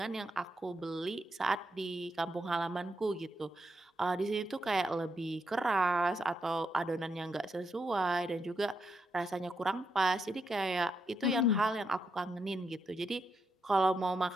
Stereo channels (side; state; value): both; normal; correlation 0.81